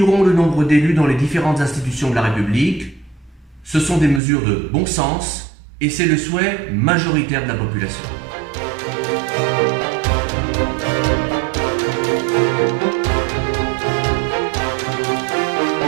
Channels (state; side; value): drops out; left; at 4.2 s